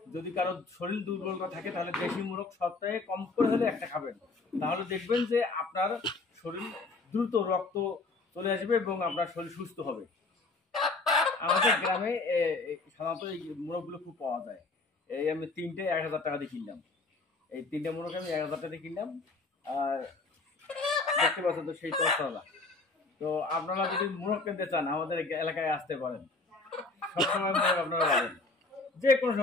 যদি কারো শরীর দুর্বলতা থাকে, তাহলে দেশি মোরগ সপ্তাহে কম করে হলে একটা খাবেন। তাহলে দেখবেন যে আপনার শরীর দ্রুত রক্ত চলে আসবে এবং আপনার শরীর সুস্থ হবে। আমাদের গ্রামে সাধারণত এই মোরগগুলো খুব পাওয়া যায়। এই আমি 3টে 1000 টাকা দিয়ে কিনলাম। এই 3টে মোরগ আমি 1000 টাকা দিয়ে কিনলাম। আর দেখতে পাচ্ছেন তো সেই তছাড়া। তো আপনারা যদি মোরগ কিনতে চান আমাদের এলাকায় আসতে পারেন। সবসময় মোরগ আপনারা পাবেন, যে কোনো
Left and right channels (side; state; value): right; quieter; 3.5 dB